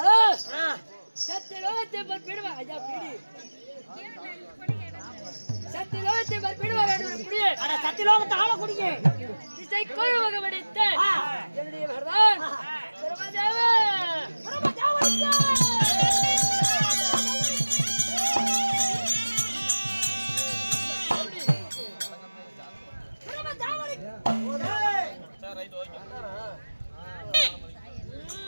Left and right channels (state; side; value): inverted; both; correlation -1.00